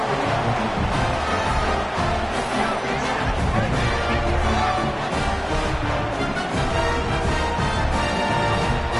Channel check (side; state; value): both; identical; correlation 1.00